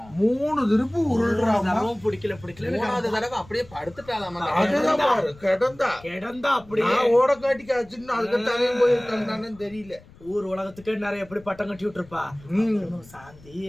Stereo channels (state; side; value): noise; left; rumble, 23 dB below the sound